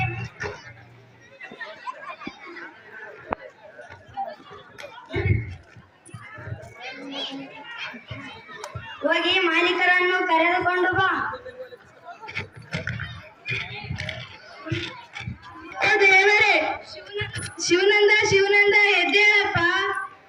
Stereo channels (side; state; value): both; identical; correlation 1.00